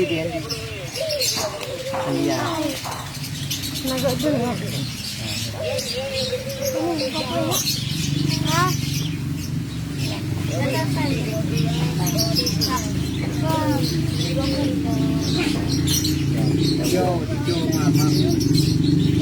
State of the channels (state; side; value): identical; both; correlation 1.00